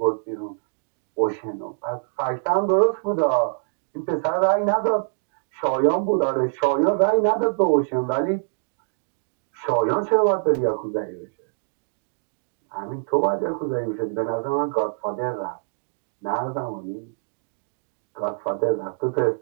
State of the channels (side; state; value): left; silent; digital silence